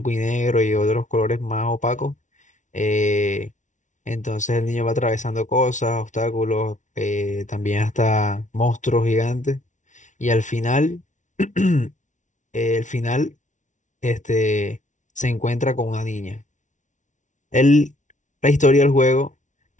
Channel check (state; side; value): late; right; 0.36 ms